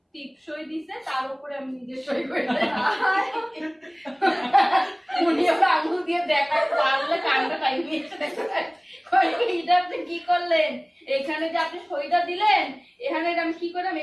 টিপ সই দিছে, তার উপরে আমি নিজে সই করে উনি ওরা আঙুল দিয়ে দেখা পারলে কান্না টাইম নিয়েছে দেখো। এটা আপনি কি করলেন, এখানে যে আপনি সইটা দিলেন, এখানে আমি কি করে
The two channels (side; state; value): both; identical; correlation 1.00